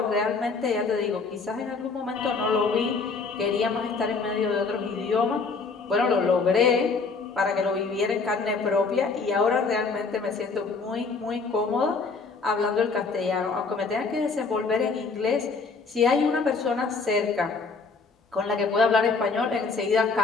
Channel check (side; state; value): right; quieter; 4.5 dB